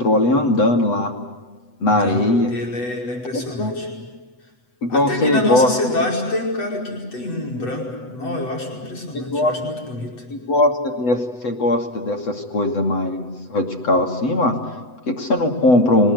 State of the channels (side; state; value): right; late; 8.0 ms